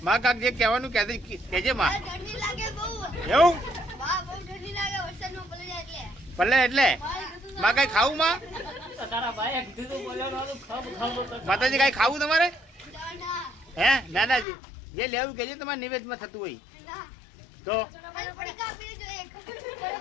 માં કાક જે કહેવાનું કહેજે માં. એવું ભલે એટલે માં કઈ ખાવું માં? માતાજી કઈ ખાવું તમારે? હે નાનાજી જે લેવું કહેજે તમારે નિવેદમાં થતું હોય તો.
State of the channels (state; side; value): drops out; right; at 14.5 s